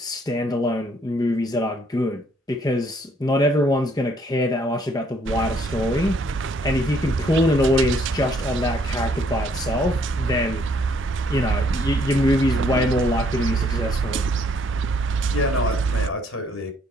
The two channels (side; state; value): both; normal; correlation 0.66